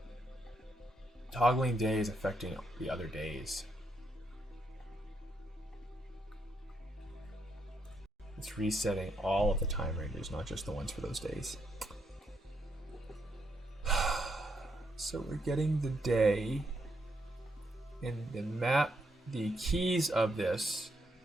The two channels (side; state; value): both; normal; correlation 0.78